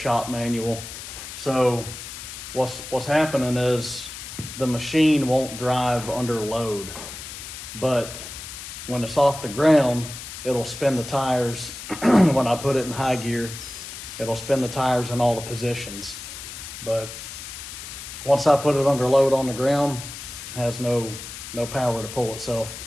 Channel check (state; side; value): noise; left; hiss, 11 dB below the sound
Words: manual. So what's happening is the machine won't drive under load, but when it's off the ground, it'll spin the tires. When I put it in high gear, it'll spin the tires in all the positions. But once I put it under load on the ground, it has no power to pull itself.